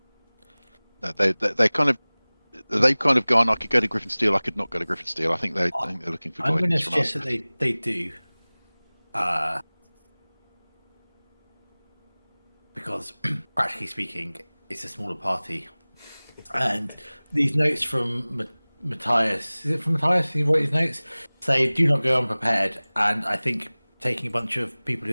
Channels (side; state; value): both; inverted; correlation -1.00